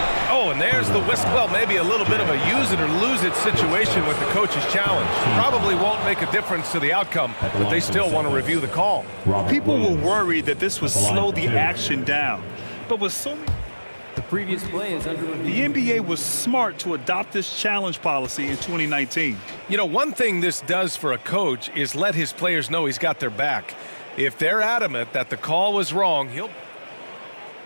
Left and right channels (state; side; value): inverted; both; correlation -1.00